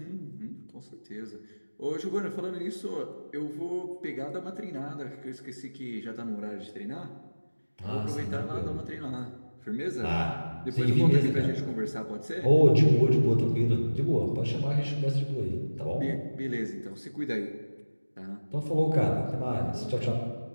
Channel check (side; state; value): both; inverted; correlation -1.00